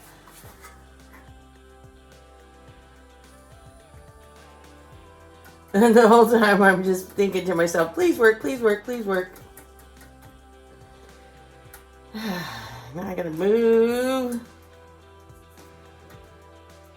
And the whole time I'm just thinking to myself, please work, please work, please work. Now I gotta move.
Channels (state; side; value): identical; both; correlation 1.00